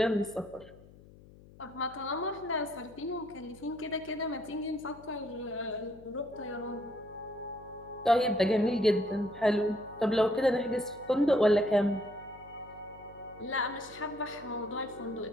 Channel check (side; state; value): left; noise; hum, 22 dB below the sound